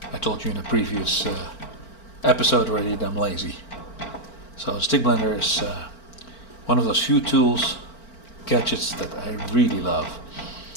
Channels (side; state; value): right; late; 4.4 ms